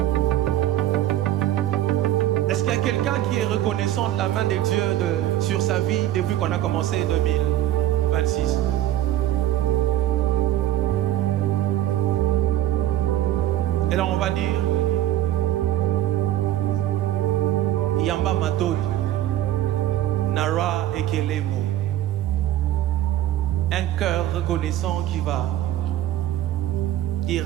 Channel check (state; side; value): quieter; left; 13.3 dB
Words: Est-ce qu'il y a quelqu'un qui est reconnaissant de la main de Dieu sur sa vie depuis qu'on a commencé 2026? Et là on va dire Yamba Matoni Nara Ekelemo. Un cœur reconnaissant qui va dire